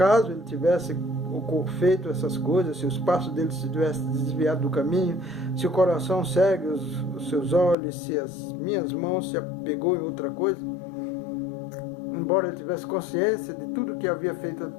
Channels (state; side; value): drops out; right; at 7.8 s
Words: ele tivesse feito essas coisas, se os passos dele se tivessem desviado do caminho, se o coração segue os seus olhos, se as minhas mãos se apegou em outra coisa, embora ele tivesse consciência de tudo que havia feito